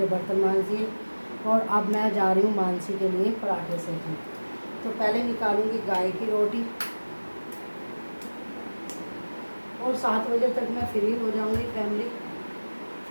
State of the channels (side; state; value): both; inverted; correlation -1.00